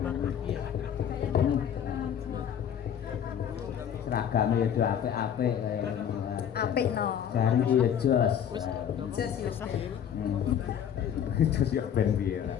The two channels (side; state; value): right; quieter; 9.0 dB